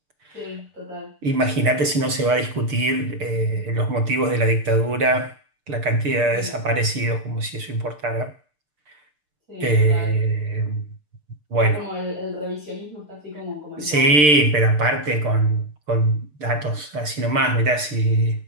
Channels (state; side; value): late; left; 6.7 ms